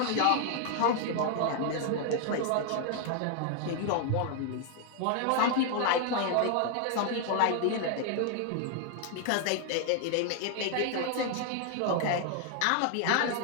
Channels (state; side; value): different; both; correlation 0.00